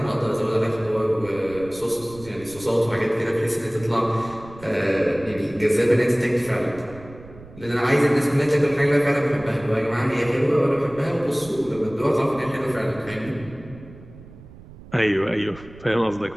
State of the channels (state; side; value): noise; right; rumble, 19 dB below the sound